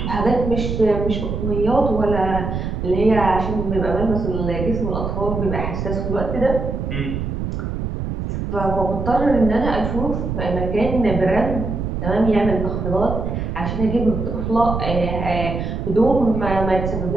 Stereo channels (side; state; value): right; noise; rumble, 3 dB below the sound